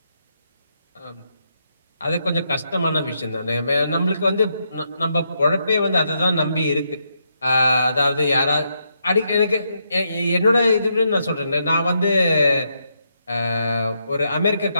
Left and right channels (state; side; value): inverted; both; correlation -0.80